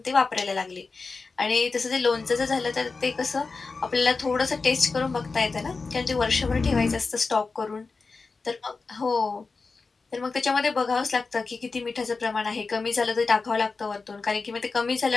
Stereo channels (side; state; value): right; quieter; 4.2 dB